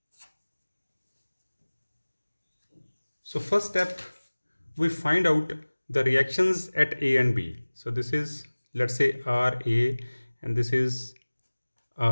step we find out the reactions at A and B. So this is, let's say, RA and this is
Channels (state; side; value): inverted; both; correlation -1.00